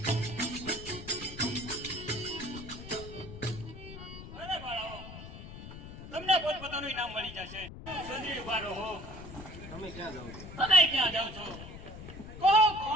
અરે બાળાઓ, તમને પોતપોતાનું ઇનામ મળી જશે. સુંદરી ઉભા રહો. તમે ક્યાં જાઓ છો? કહો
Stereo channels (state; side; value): noise; left; rumble, 12 dB below the sound